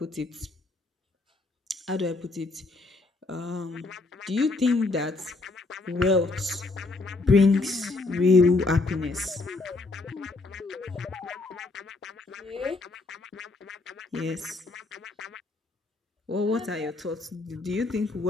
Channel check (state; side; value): quieter; right; 3.4 dB